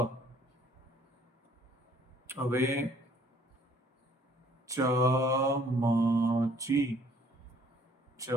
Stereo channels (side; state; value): both; normal; correlation 0.59